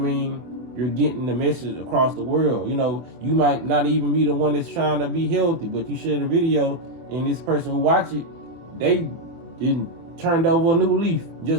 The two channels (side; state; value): left; late; 24 ms